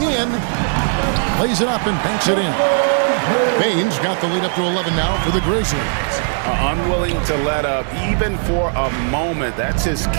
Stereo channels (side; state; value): left; silent; 63 dB below the other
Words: in. Plays it up and banks it in. Bain's got the lead up to 11 now for the Grizzlies. Unwilling to let up even for a moment. That's his